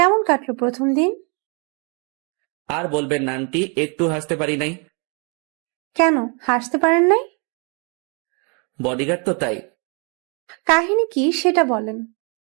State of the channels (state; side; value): quieter; left; 36.1 dB